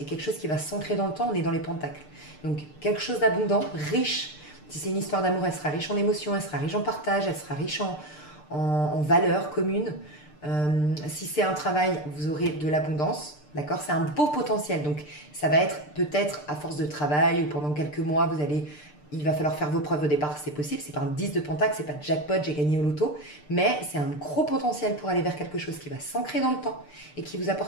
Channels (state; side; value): late; right; 6.7 ms